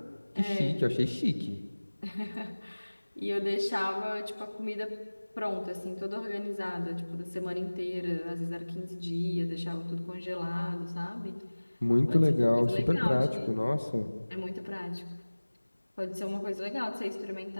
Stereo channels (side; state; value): both; inverted; correlation -1.00